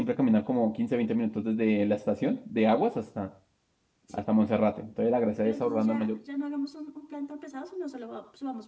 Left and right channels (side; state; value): both; identical; correlation 1.00